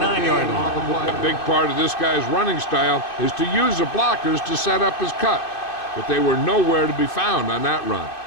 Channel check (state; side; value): late; right; 2.6 ms